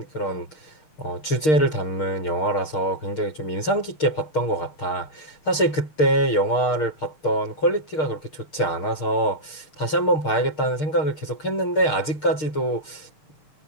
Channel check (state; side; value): late; right; 6.5 ms